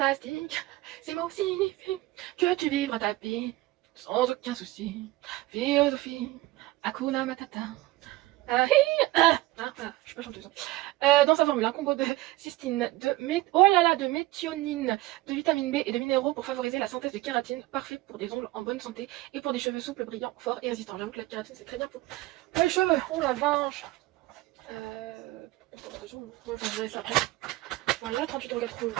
ces mots signifient que tu vivras ta vie sans aucun souci. Philosophie, Hakuna Matata. Je suis pas chanteuse. Dans sa formule, un combo de cystine, de méthionine, de vitamine B et de minéraux pour favoriser la synthèse de kératine, parfait pour des ongles en bonne santé et pour des cheveux souples, brillants, forts et résistants. J'avoue que la kératine c'est très bien pour les cheveux. Oh la vache. Je dirais ça après. Voilà,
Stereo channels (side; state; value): left; quieter; 18.3 dB